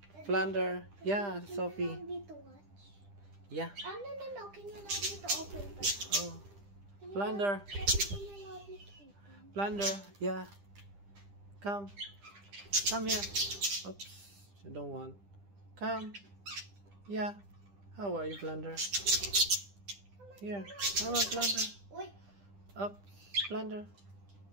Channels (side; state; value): left; late; 10 ms